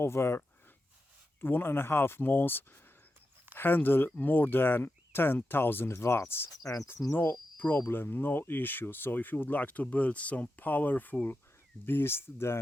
1.5 months handle more than 10,000 watts, and no problem, no issue. So if you would like to build some powerful beast,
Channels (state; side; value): normal; both; correlation 0.89